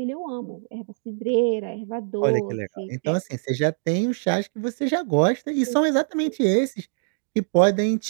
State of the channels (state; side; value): silent; left; digital silence